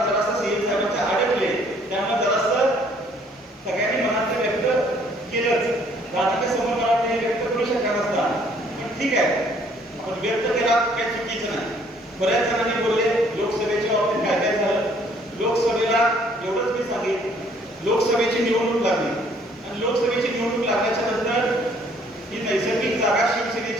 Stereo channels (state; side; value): normal; both; correlation 0.61